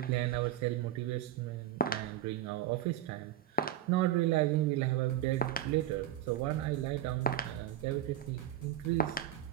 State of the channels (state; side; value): quieter; left; 11.2 dB